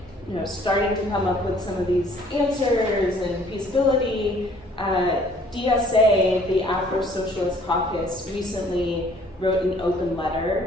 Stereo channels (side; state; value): both; normal; correlation 0.58